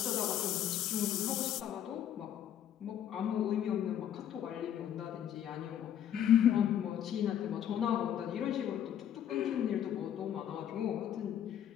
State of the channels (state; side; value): quieter; right; 10.2 dB